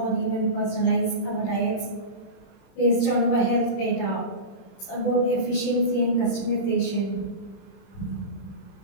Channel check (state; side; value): late; right; 30 ms